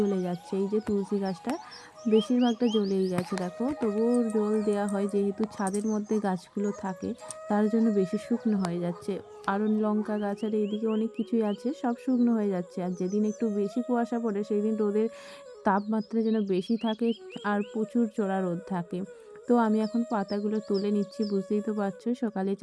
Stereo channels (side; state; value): both; identical; correlation 1.00